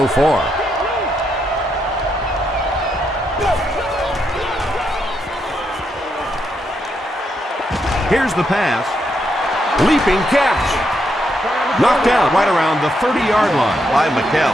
far. Here's the pass. Leaping catch. Knocked out right around the 30-yard line by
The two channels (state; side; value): normal; both; correlation 0.79